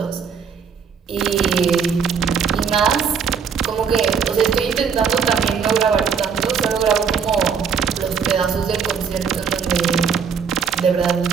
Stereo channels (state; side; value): quieter; left; 6.5 dB